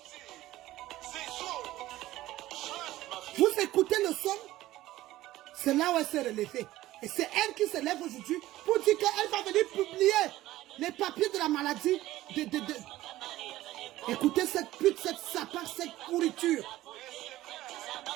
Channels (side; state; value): left; quieter; 15.8 dB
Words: Vous écoutez le son? C'est là où elle s'est relevée. Et c'est elle qui se lève aujourd'hui pour dire qu'elle va venir publier les papiers de la maladie. Écoutez cette pute, cette sapin, cette pourriture.